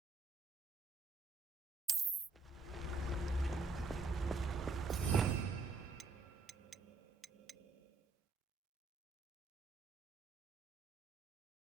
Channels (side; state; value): left; quieter; 3.9 dB